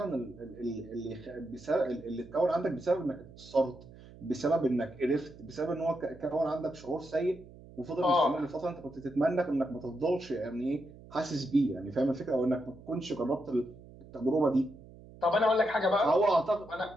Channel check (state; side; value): noise; right; hum, 19 dB below the sound